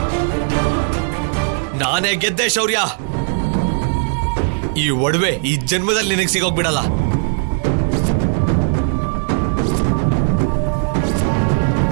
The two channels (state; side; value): silent; left; digital silence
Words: ನಾನೇ ಗೆದ್ದೆ ಶೌರ್ಯ. ಈ ಒಡವೆ ಈ ಜನ್ಮದಲ್ಲಿ ನಿನಗೆ ಸಿಗೋಗ್ಬಿಡಲ್ಲ.